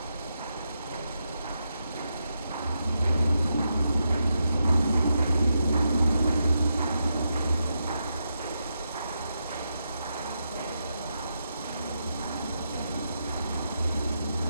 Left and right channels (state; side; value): inverted; both; correlation -0.84